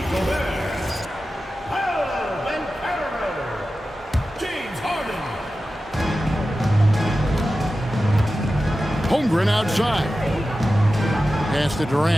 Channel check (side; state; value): both; normal; correlation 0.93